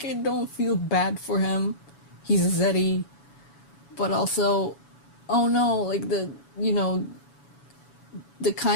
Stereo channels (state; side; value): late; right; 7.1 ms